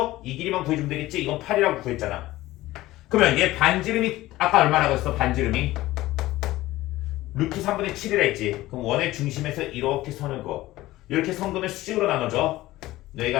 이 길이만 구해주면 되겠지? 이건 8이라고 구했잖아. 그러면 얘 반지름이 아까 얼마라고 했어? 반지름이 루트 3분의 7이라 했지. 그럼 원의 중심에서 이렇게 선을 그어. 이렇게 선 그으면 수직으로 나눠져.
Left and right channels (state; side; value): quieter; right; 17.0 dB